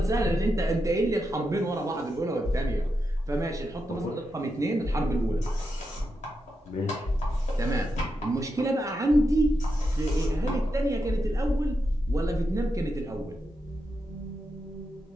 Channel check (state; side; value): normal; both; correlation 0.86